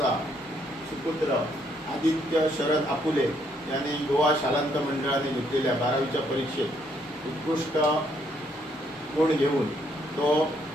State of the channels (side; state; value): both; normal; correlation 0.71